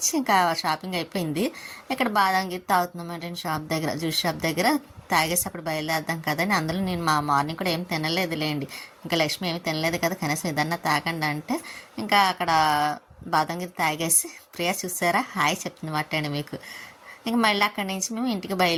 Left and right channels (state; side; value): identical; both; correlation 1.00